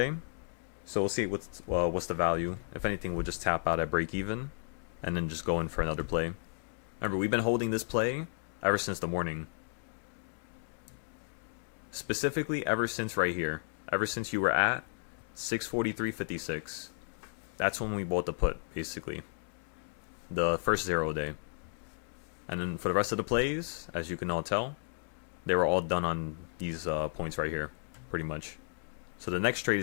So we'll see what's the value. If anything, we'll just tap out at break even and then just go in for another play. Remember, we've been holding this play ever since the morning. Specifically, ever since right here. Ever since you were at 643.56. That's when we bought the put, basically. The first 0 day. And then for the rest of the plays, as you can all tell, they were all done on these points right here, pretty much. So the next trade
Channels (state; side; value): silent; right; 55 dB below the other